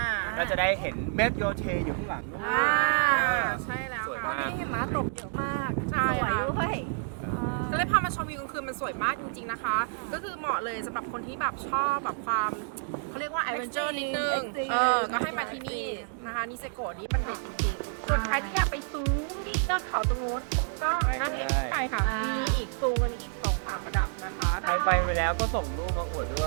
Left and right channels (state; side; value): silent; left; digital silence